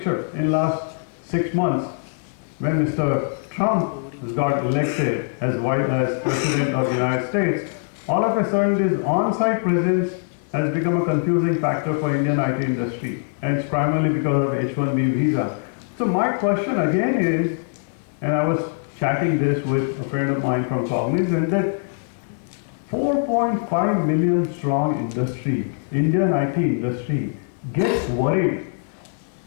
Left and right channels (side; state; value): right; silent; 64 dB below the other